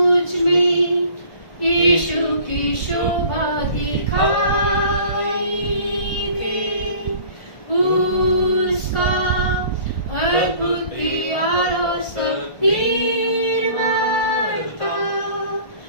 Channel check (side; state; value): right; late; 1.4 ms